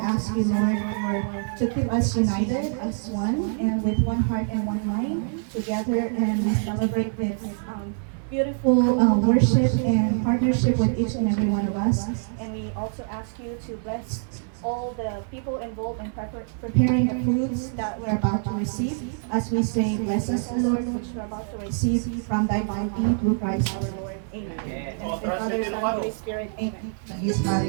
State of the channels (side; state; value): left; silent; 62 dB below the other